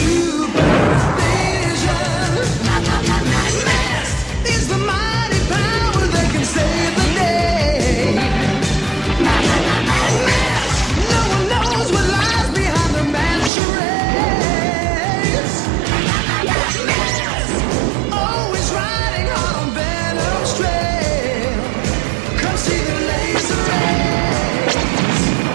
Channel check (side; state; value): left; drops out; at 13.5 s